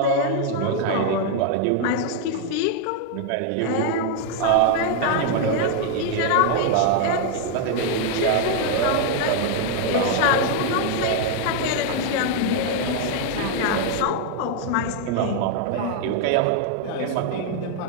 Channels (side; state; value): both; different; correlation 0.00